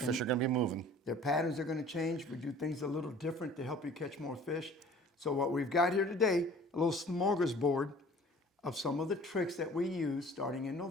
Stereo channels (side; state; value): both; normal; correlation 0.48